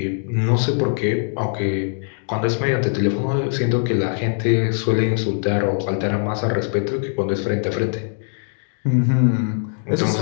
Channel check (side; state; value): right; silent; digital silence